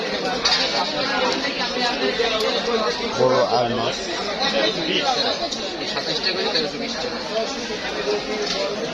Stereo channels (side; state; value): both; identical; correlation 1.00